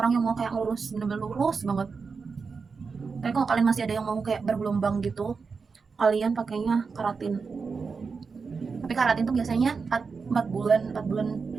yang mau kayak lurus, bener-bener lurus banget. Tapi kalau kalian masih ada yang mau kayak bergelombang gitu, kalian pakainya keratin. Tapi keratin tuh biasanya 4 bulan 4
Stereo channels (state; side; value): quieter; left; 5.0 dB